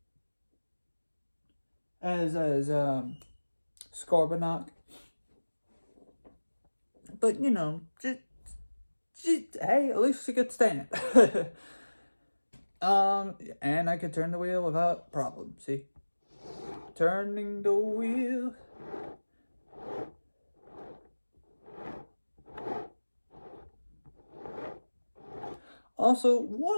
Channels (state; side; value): inverted; both; correlation -1.00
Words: Scorponok. But hey, at least she could stand. And I could turn the wheel without problem. See, turning the wheel. Also,